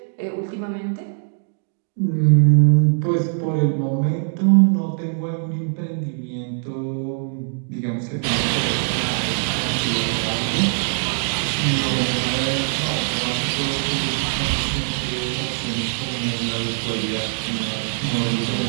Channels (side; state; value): left; silent; digital silence